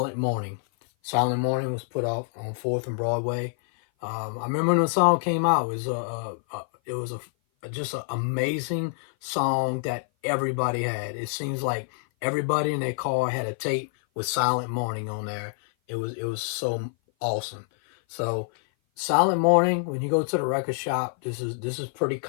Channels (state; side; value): silent; right; 56 dB below the other